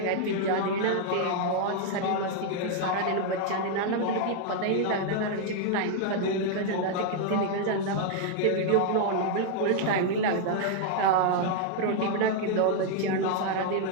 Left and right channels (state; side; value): different; both; correlation 0.00